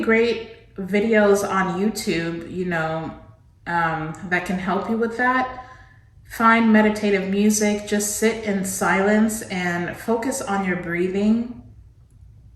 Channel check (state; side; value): identical; both; correlation 1.00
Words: videos on YouTube, you know, that can help you with that. Find meditative music, just sit in silence and focus on your breathing.